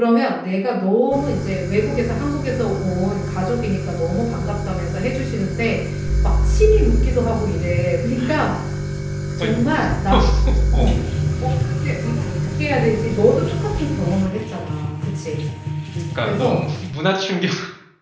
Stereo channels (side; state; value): both; identical; correlation 1.00